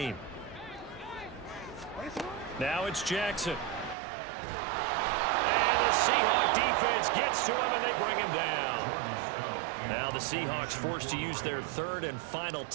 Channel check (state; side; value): drops out; left; at 4.0 s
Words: Now it's Jackson. And the Seahawk defense gets to him, and they bring him down. Now the Seahawks forced to use their 3rd and final